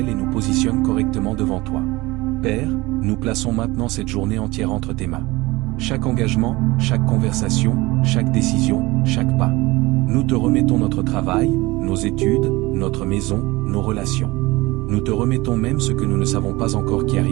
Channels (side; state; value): left; quieter; 21.5 dB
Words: et nous positionne correctement devant toi. Père, nous plaçons maintenant cette journée entière entre tes mains. Chaque engagement, chaque conversation, chaque décision, chaque pas. Nous te remettons notre travail, nos études, notre maison, nos relations. Nous te remettons même ce que nous ne savons pas encore qui